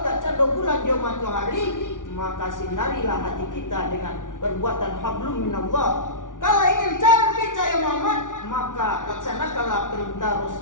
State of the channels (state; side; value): late; right; 0.88 ms